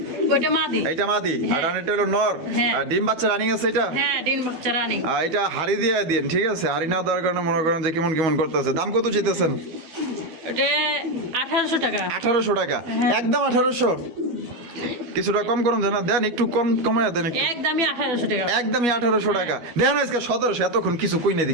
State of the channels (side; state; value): left; late; 12 ms